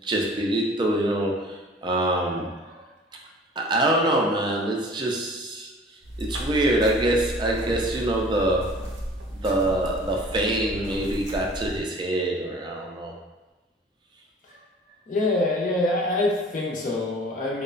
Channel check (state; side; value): normal; both; correlation 0.47